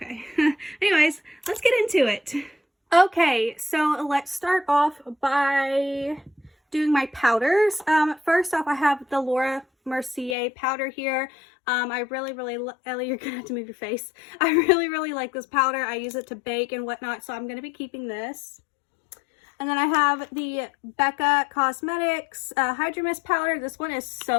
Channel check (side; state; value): right; drops out; at 10.4 s